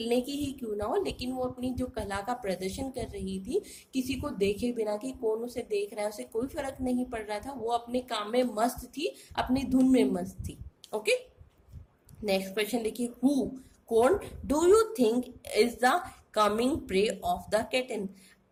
की ही क्यों ना हो, लेकिन वो अपनी जो कला का प्रदर्शन कर रही थी, किसी को देखे बिना कि कौन उसे देख रहा है उसे कोई फर्क नहीं पड़ रहा था. वो अपने काम में मस्त थी, अपनी धुन में मस्त थी. ओके, नेक्स्ट क्वेश्चन देखिए, हु, कौन, do you think is the coming pray of the cation.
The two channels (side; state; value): both; identical; correlation 1.00